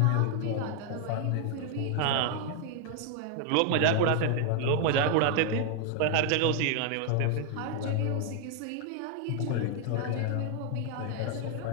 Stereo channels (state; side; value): different; both; correlation 0.00